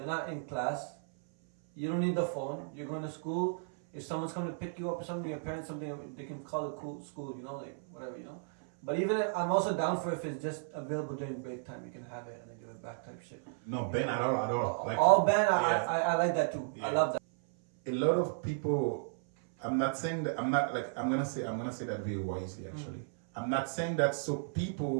not in class. You don't need the phone. You're going to school. if someone's coming to pick you up or something, your parents something, they can call it cool school, you know, like whatever, you know. But even I'm also down for if it's just available during break time, you can have it and then give it back type shit. No, ban at all. Like, all ban, yeah. I like that too. Yeah. I love that. A lot of people, I'm not saying that, I'm gonna say that very wisely actually. I'm not saying that so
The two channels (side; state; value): left; silent; 55 dB below the other